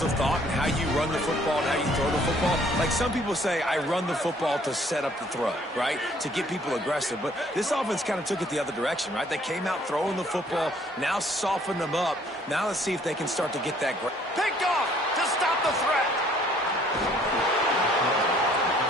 of thought in how you run the football and how you throw the football. Like some people say, I run the football to set up the throw, right? To get people aggressive. But this offense kind of took it the other direction, right? They came out throwing the football, now softened them up. Now let's see if they can start to get that. Picked off to stop the threat.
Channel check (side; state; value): both; normal; correlation 0.60